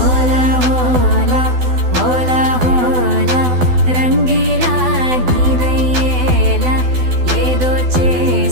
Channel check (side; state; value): left; late; 12 ms